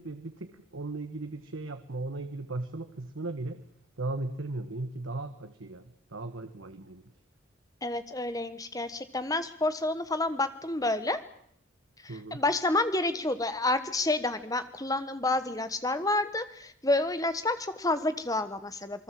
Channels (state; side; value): normal; both; correlation 0.44